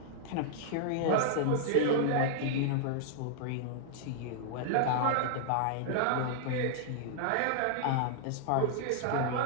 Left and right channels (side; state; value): both; different; correlation -0.01